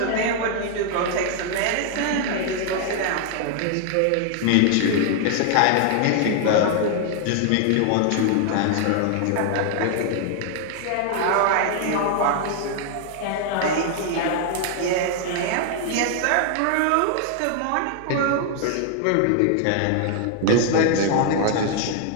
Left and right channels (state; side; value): different; both; correlation 0.00